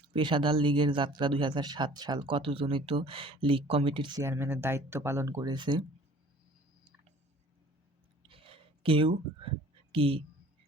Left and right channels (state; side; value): normal; both; correlation 0.50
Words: পেশাদার লীগের যাত্রা ২০০৭ সাল। কতজনই তো লীগ কমিটির চেয়ারম্যানের দায়িত্ব পালন করেছে। কেউ কি